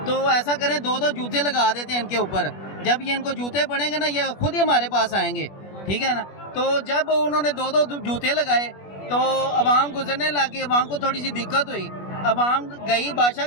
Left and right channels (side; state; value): right; late; 21 ms